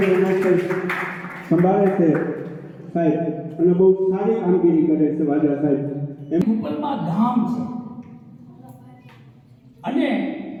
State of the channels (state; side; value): identical; both; correlation 1.00